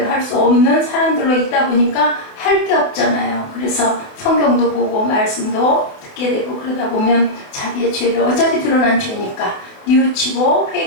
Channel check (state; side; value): late; right; 28 ms